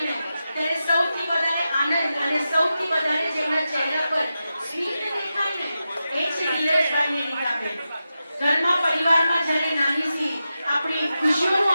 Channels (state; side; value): inverted; both; correlation -0.90